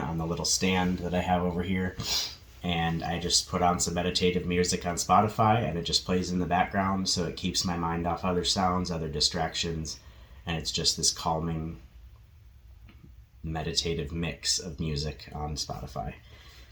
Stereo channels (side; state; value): both; identical; correlation 1.00